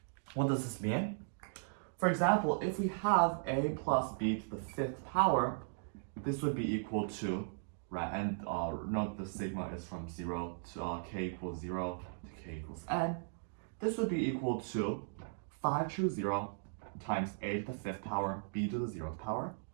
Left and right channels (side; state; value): left; silent; digital silence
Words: What does this mean? For example, if we have a plus b to the fifth power, this would be equal to, right, and note the sigma is from 0 to k equals 0 to k equals n. This would be equal to 5 choose 0 times a to the fifth power, b to the 0th power,